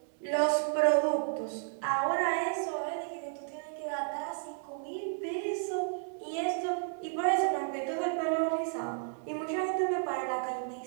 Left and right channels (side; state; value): left; silent; digital silence